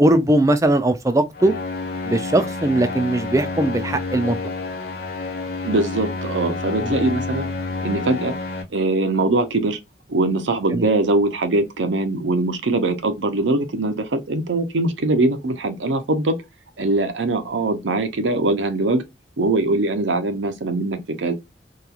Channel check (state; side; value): normal; both; correlation 0.35